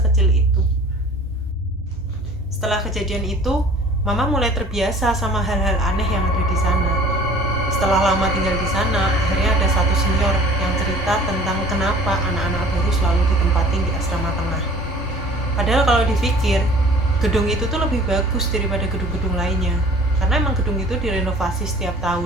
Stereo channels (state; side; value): normal; both; correlation 0.48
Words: itu. Setelah kejadian itu, Mama mulai terbiasa sama hal-hal aneh yang ada di sana. Setelah lama tinggal di sana, akhirnya ada satu senior yang cerita tentang kenapa anak-anak baru selalu ditempatin di asrama tengah. Padahal kalau dipikir, gedung itu tuh lebih bagus daripada gedung-gedung lainnya, karena emang gedung itu direnovasi setiap